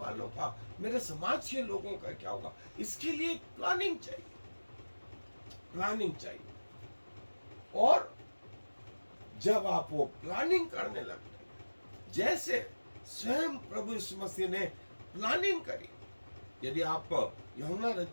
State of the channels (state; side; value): inverted; both; correlation -1.00